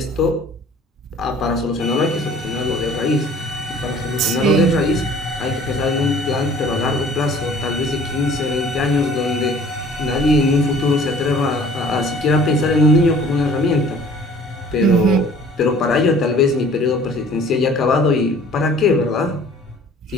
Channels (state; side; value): normal; both; correlation 0.51